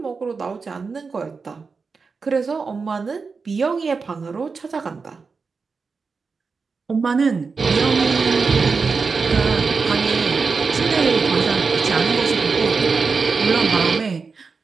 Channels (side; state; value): left; quieter; 4.8 dB